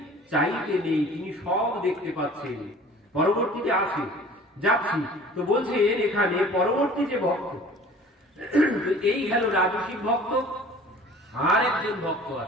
চাইতে নেই, তিনি সব দেখতে পাচ্ছেন। পরবর্তীতে আছে যাচ্ছি, তো বলছেন এখানে পরবর্তী যে ভক্ত, এই গেল রাজসিক ভক্ত। আর একজন ভক্ত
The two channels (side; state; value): both; normal; correlation 0.47